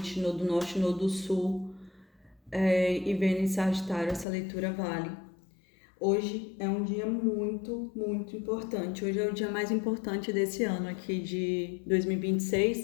Nodo Norte, Nodo Sul e Vênus em Sagitário, essa leitura vale. Hoje é um dia muito, muito importante. Hoje é o dia mais importante desse ano aqui de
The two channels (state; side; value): drops out; right; at 4.2 s